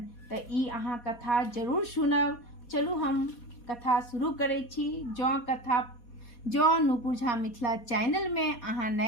तऽ ई अहाँ कथा जरूर सुनब। चलू हम कथा शुरू करै छी। जँ नुपुर झा मिथिला चैनल में अहाँ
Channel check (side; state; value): right; late; 4.2 ms